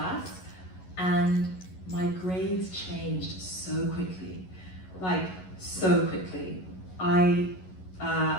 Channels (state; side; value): late; right; 11 ms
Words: And my grades changed so quickly, like so quickly.